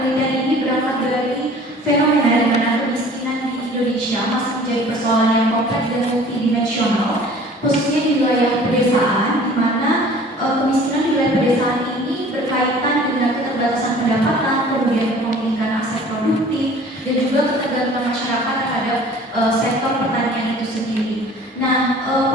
ini berangkat dari fenomena di mana kemiskinan di Indonesia masih menjadi persoalan yang kompleks dan multidimensional, khususnya di wilayah pedesaan, di mana kemiskinan di wilayah pedesaan ini berkaitan dengan keterbatasan pendapatan, kemudian memiliki aset produktif, dan juga ketergantungan masyarakat terhadap sektor pertanian itu sendiri. Nah,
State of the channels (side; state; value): both; normal; correlation 0.48